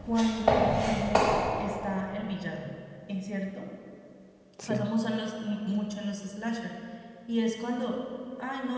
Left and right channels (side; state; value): both; identical; correlation 1.00